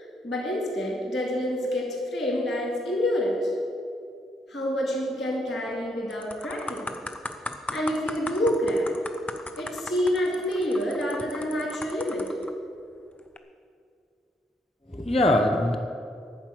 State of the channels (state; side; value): normal; both; correlation 0.73